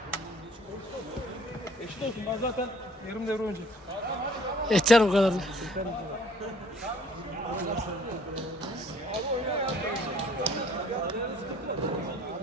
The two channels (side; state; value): both; normal; correlation 0.57